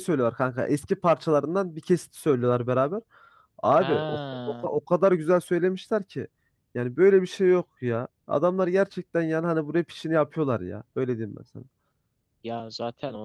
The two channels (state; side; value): identical; both; correlation 1.00